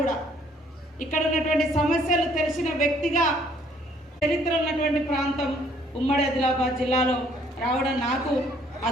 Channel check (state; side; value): normal; both; correlation 0.62